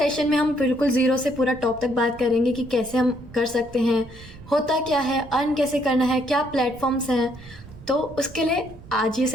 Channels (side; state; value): right; noise; rumble, 18 dB below the sound